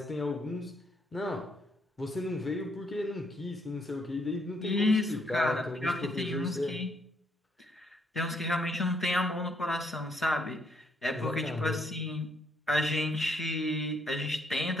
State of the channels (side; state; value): both; normal; correlation 0.72